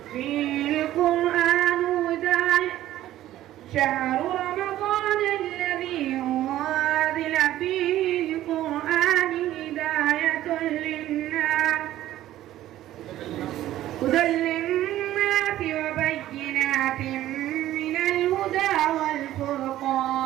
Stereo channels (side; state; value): left; quieter; 13.8 dB